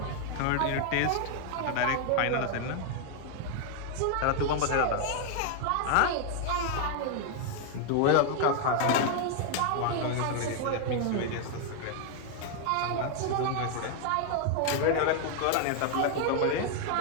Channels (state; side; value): different; both; correlation 0.00